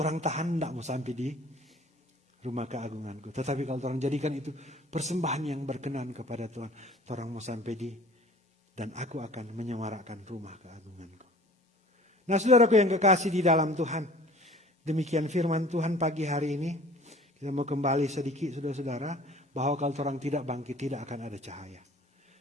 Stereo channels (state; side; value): normal; both; correlation 0.48